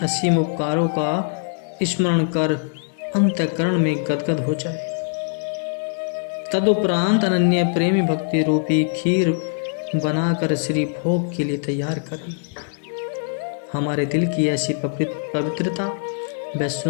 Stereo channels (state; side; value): silent; right; digital silence